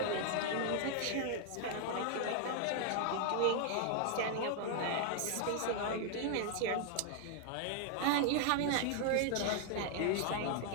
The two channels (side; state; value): both; different; correlation 0.00